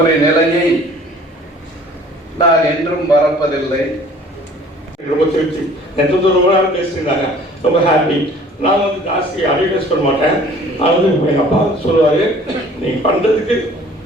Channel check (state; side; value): normal; both; correlation 0.51